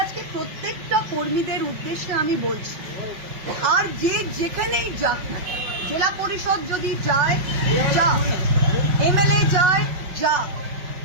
আজকে প্রত্যেকটা কর্মীদের উদ্দেশ্যে আমি বলছি, আর যে যেখানেই যাক না, জেলা পরিষদ যদি যায় যা, এমএলএ যায় যা,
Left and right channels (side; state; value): left; late; 5.4 ms